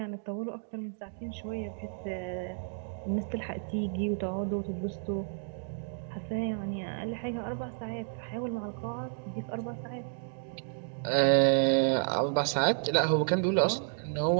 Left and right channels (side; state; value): left; silent; digital silence